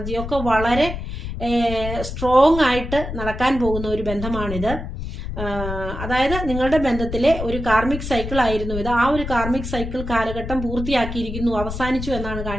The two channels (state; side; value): noise; left; rumble, 7 dB below the sound